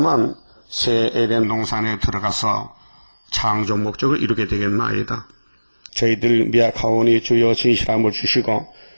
새 에덴 동산에 들어가서 창조 목적을 이루게 되겠나이다. 저희들 미약하오니 주여 진실함을 주시고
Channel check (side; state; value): both; inverted; correlation -1.00